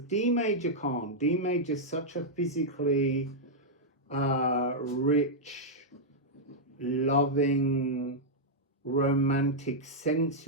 D major can't. D major is such a physically rich, loving, romantic,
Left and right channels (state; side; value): normal; both; correlation -0.06